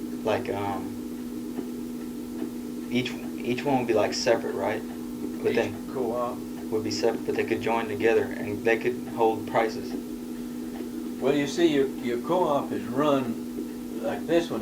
Like each one would be like separate, right? But Each then co-op. would be separate, but they could join together and they could hold prices. Well, you see, your co-op is run, like this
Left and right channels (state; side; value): identical; both; correlation 1.00